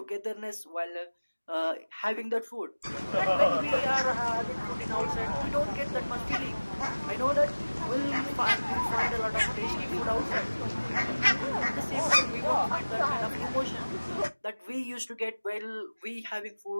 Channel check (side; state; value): both; inverted; correlation -1.00